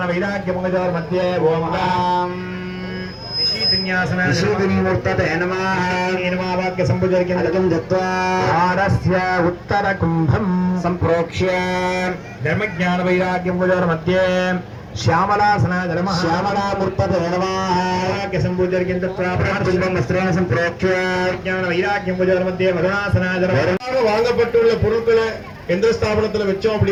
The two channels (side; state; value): both; identical; correlation 1.00